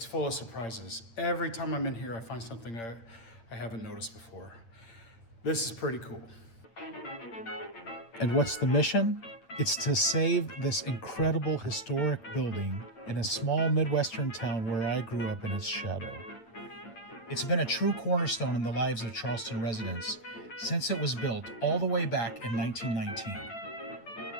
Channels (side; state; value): right; late; 8.9 ms